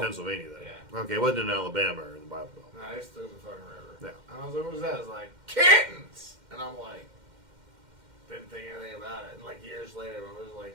then? Yeah. Okay, it wasn't in Alabama or in the Bible Belt. No, I just threw it in the fucking river. Yeah. And I was like, what was that? I was like, kittens! And I'm like, didn't think anything about it. And like years later, I was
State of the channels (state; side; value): late; left; 2.1 ms